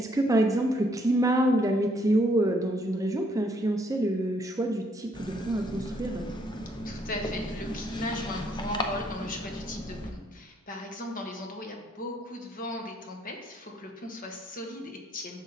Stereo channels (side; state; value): both; normal; correlation 0.69